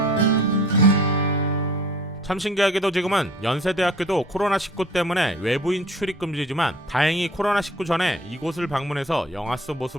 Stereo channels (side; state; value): both; normal; correlation 0.49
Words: 참 신기하게도 지금은 연세대학교도 코로나19 때문에 외부인 출입 금지지만 다행히 코로나19 전에 이곳을 방문해서 영화 속